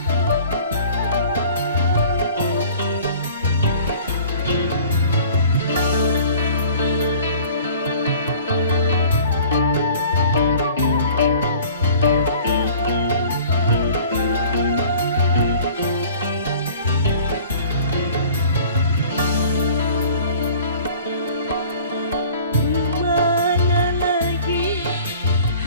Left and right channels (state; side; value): inverted; both; correlation -0.48